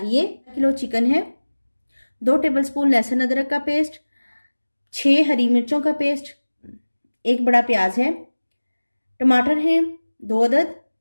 1 किलो चिकन है, 2 टेबलस्पून लहसुन अदरक का पेस्ट, 6 हरी मिर्चों का पेस्ट, 1 बड़ा प्याज है, टमाटर है 2 अदद,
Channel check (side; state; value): both; inverted; correlation -1.00